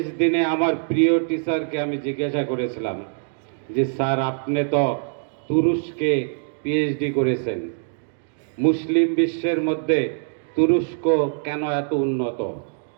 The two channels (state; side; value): silent; left; 63 dB below the other